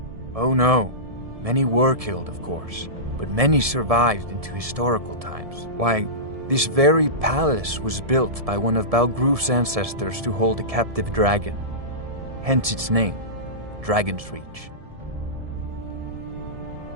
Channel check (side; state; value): left; late; 1.7 ms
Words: Oh no, many were killed, of course, but many survived into historical times. Why, this very palace was built by one of Balgruf's ancestors to hold a captive dragon. Hence its name, Dragon's Reach.